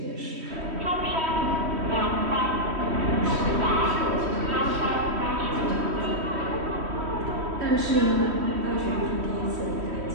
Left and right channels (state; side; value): late; left; 3.1 ms